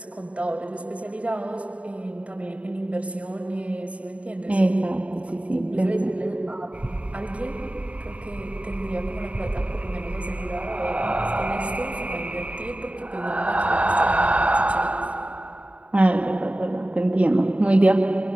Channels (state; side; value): late; left; 0.065 ms